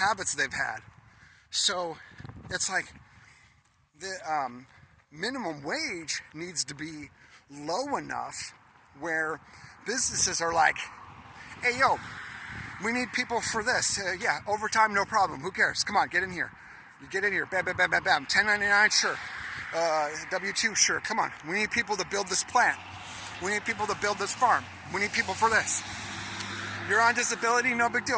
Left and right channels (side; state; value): both; identical; correlation 1.00